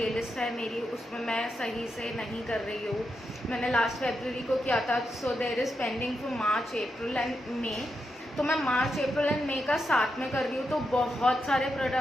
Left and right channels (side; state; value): both; normal; correlation 0.85